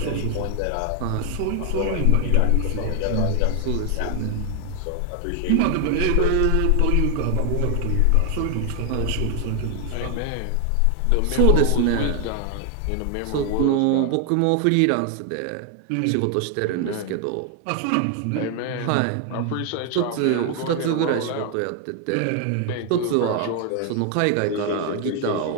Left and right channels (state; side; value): different; both; correlation 0.00